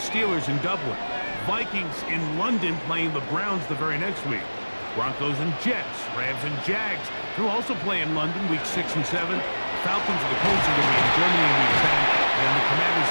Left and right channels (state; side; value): inverted; both; correlation -1.00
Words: Steelers in Dublin. Vikings in London playing the Browns the very next week. Broncos and Jets. Rams and Jags who also play in London week 6 and 7. Falcons and the Colts are going to be in Germany in week 10. And the Commanders